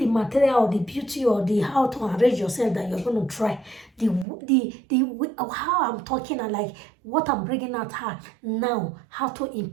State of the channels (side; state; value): left; drops out; at 4.2 s